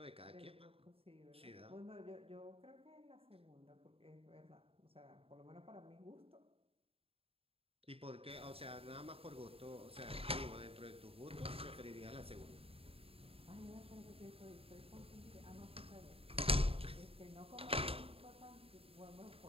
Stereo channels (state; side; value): late; left; 0.28 ms